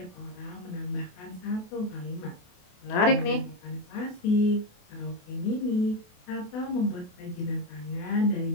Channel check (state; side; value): late; right; 28 ms